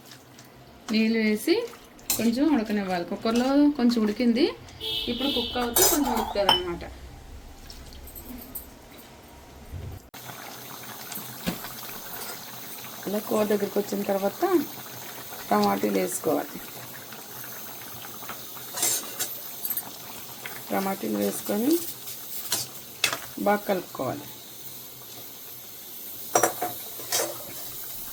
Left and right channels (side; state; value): both; identical; correlation 1.00